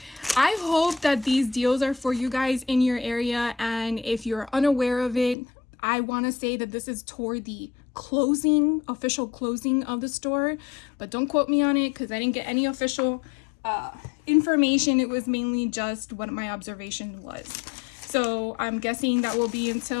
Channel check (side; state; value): right; drops out; at 5.4 s